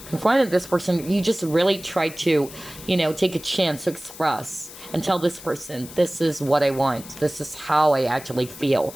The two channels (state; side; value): noise; left; hiss, 16 dB below the sound